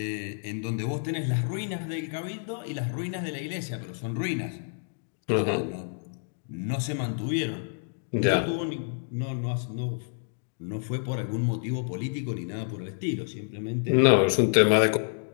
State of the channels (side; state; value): right; silent; digital silence